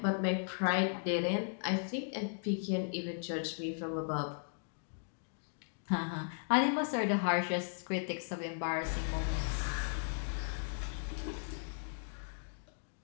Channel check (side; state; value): right; silent; digital silence